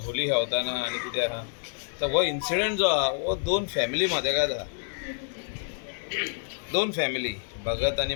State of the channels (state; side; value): silent; right; digital silence